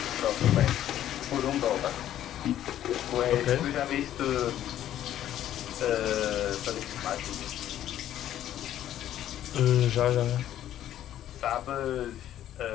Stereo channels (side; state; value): right; quieter; 11.8 dB